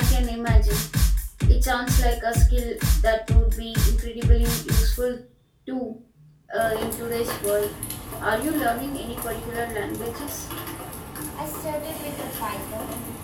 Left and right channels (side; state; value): both; identical; correlation 1.00